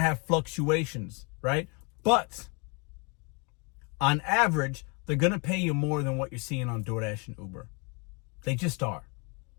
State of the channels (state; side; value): quieter; right; 32.9 dB